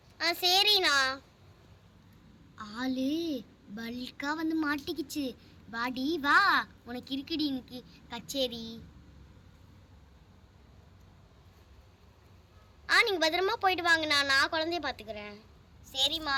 சரிண்ணா. ஆளு பல்கா வந்து மாட்டிக்கிச்சு. வாடி வா, உனக்கு இருக்குடி இன்னைக்கு கச்சேரி. நீங்க பத்திரமா போயிட்டு வாங்கண்ணா, நான் குழந்தைய பார்த்துக்கிறேன். சரிம்மா,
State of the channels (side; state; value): both; identical; correlation 1.00